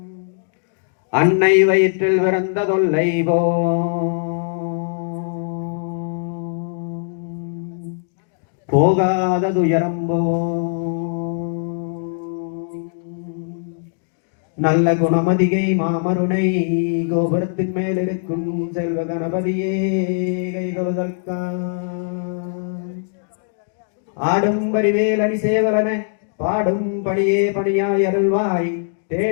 அன்னை வயிற்றில் பிறந்த தொல்லை போகாத துயரம் நல்ல குணமதிகை மாமருணை கோபுரத்தின் மேல் இருக்கும் செல்வ கணபதியே கைதொழுதற்கா ஆடும் பரிவேல் அணி சேவலன பாடும் பணியே பணியாய் அருள்வாய்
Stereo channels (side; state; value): right; silent; digital silence